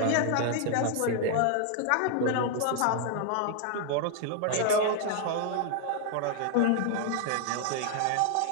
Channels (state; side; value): different; both; correlation 0.00